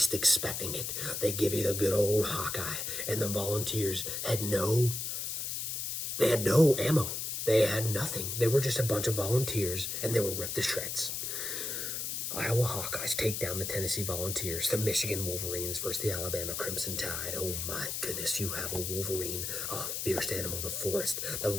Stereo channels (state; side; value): noise; left; hiss, 3 dB below the sound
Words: expecting it. They give you the good old Hawkeye, and the Volunteers had no ammo. They had nothing. They were just a bunch of volunteers, and they were ripped to shreds. Iowa Hawkeyes take down the Tennessee Volunteers. The Michigan Wolverines versus the Alabama Crimson Tide. Oh my goodness, you have a Wolverine, a fierce animal of the forest that